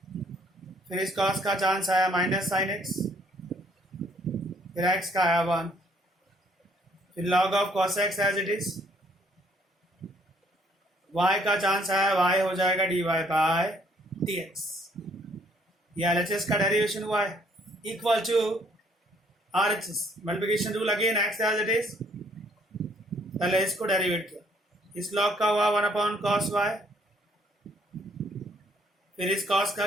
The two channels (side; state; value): both; normal; correlation 0.65